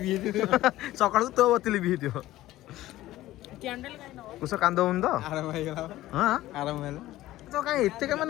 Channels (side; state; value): right; quieter; 15.7 dB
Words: ହେଇଯିବ ସକାଳୁ ତୋ ବତି ଲିଭି ହେଇଥିବ। କୁଶ କାନ୍ଦ ହଉନି ତ? ଆରାମ ହେଇଗଲା ହଁ ଆରାମ ହେଲା ତ କାଇଁ ଏତେ